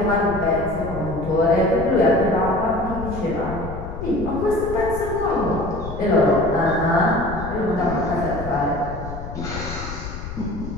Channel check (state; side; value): noise; left; rumble, 9 dB below the sound